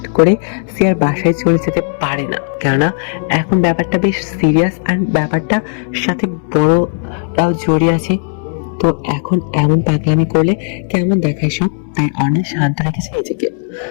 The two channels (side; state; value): right; silent; digital silence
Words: করে সিয়ার বাসায় চলে যেতে পারে না, কেননা এখন ব্যাপারটা বেশ সিরিয়াস, আর ব্যাপারটার সাথে বড়রাও জড়িয়ে আছে। তো এখন এমন পাগলামি করলে কেমন দেখায় সব, তাই অনিল শান্ত রেখেছে নিজেকে।